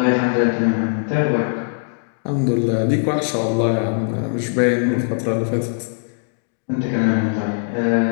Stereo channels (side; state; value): right; silent; 65 dB below the other